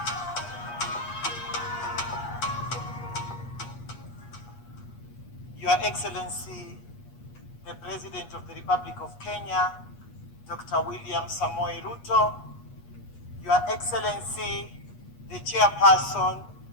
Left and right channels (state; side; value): late; right; 8.4 ms